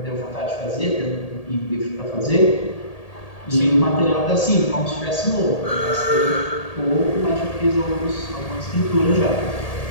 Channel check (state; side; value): late; right; 1.8 ms